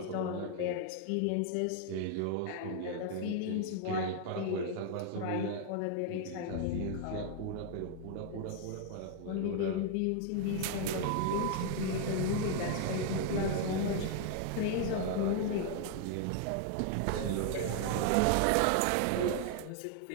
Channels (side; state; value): both; different; correlation 0.00